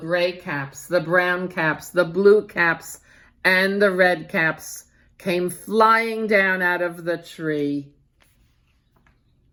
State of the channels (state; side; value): identical; both; correlation 1.00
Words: caps, the brown caps, the blue caps, and the red caps came flying down out of the tree.